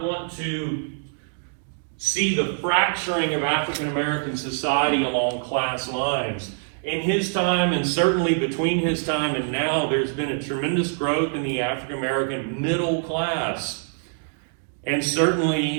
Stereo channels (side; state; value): left; silent; digital silence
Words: want to see the fracturing of African American society along class lines. In his time, and certainly between his time and now, there's been a tremendous growth in the African American middle class. And